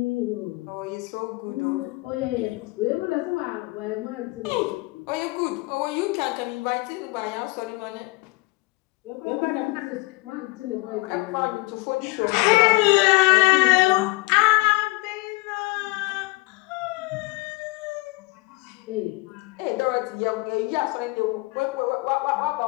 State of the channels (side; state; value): right; quieter; 23.9 dB